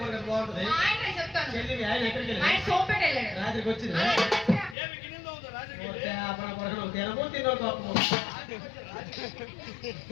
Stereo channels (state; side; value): drops out; right; at 4.8 s